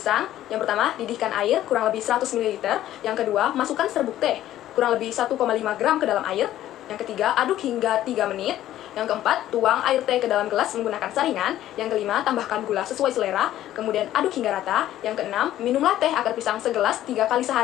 yang pertama, didihkan air kurang lebih 100 ml. Yang kedua, masukkan serbuk teh kurang lebih 1,5 gram ke dalam air. Yang ketiga, aduk hingga 3 menit. Yang keempat, tuang air teh ke dalam gelas menggunakan saringan. Yang kelima, tambahkan gula sesuai selera, kemudian aduk hingga rata. Yang keenam, minumlah teh akar pisang segelas 3 kali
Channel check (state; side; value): quieter; right; 13.1 dB